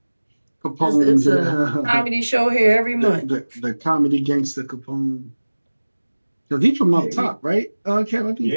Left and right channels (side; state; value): both; inverted; correlation -1.00